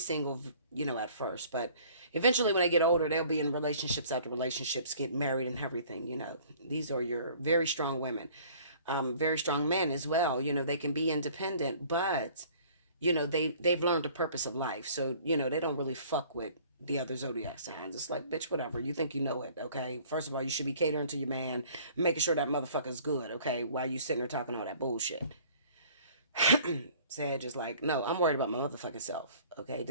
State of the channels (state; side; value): inverted; both; correlation -0.52